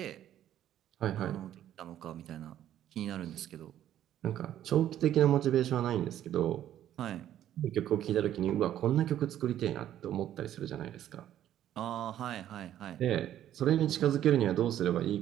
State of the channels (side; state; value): left; quieter; 11.6 dB